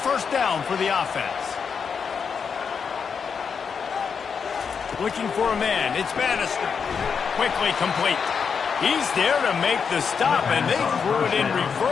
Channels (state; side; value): quieter; right; 6.2 dB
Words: down for the offense. Looking for a man. It's Bannister. Quickly complete. He's there to make the stop, and they threw it in